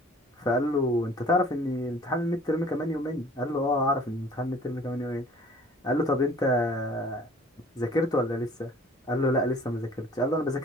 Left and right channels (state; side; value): normal; both; correlation 0.51